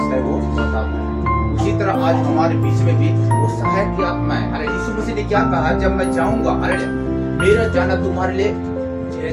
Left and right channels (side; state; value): both; identical; correlation 1.00